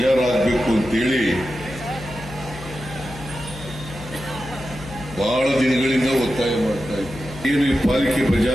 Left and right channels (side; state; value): left; noise; hum, 14 dB below the sound